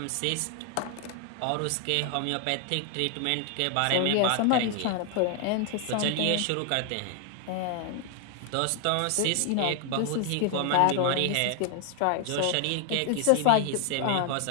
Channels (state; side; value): different; both; correlation 0.00